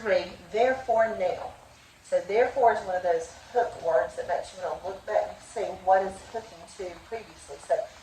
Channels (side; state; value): both; identical; correlation 1.00